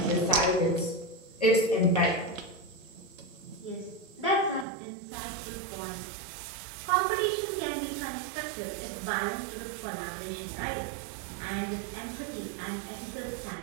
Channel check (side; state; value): left; drops out; at 4.7 s